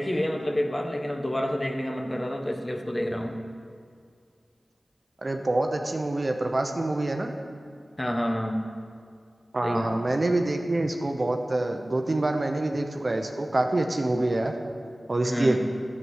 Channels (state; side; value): normal; both; correlation 0.98